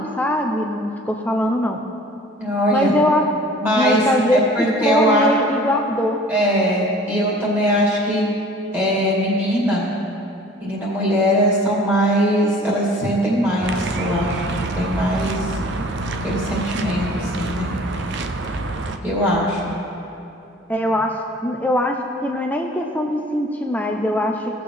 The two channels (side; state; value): both; normal; correlation 0.49